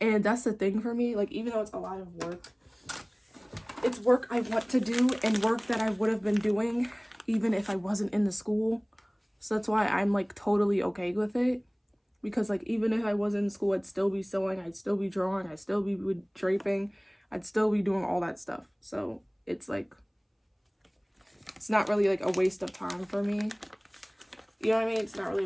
And that's the thing for me. Like, even though it's a lot of work, it's work I want to do and work that I would have been doing even if I wasn't in the school. So that's why I'm like totally okay with it. Because like, even if I wasn't in school, I'd still be sewing, I'd still be drawing, I'd still be draping, I'd still be doing all that stuff. So it's like, it's not really like a waste of time for me. You know what I mean? It's not really a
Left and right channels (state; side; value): identical; both; correlation 1.00